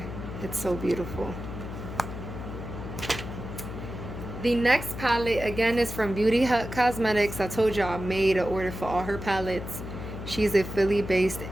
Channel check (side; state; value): left; noise; hum, 8 dB below the sound